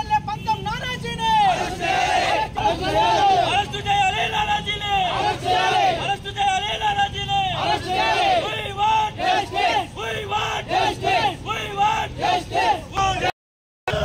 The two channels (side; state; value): both; identical; correlation 1.00